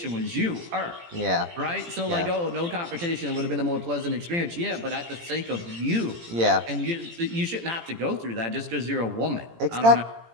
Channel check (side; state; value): left; late; 17 ms